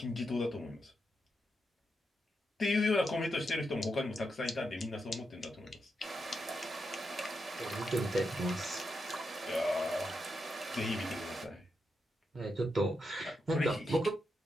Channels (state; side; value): normal; both; correlation 0.85